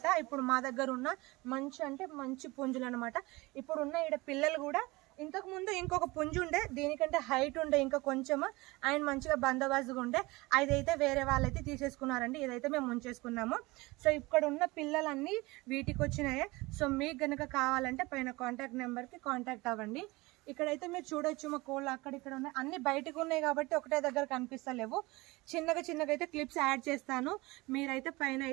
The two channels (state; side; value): quieter; left; 22.5 dB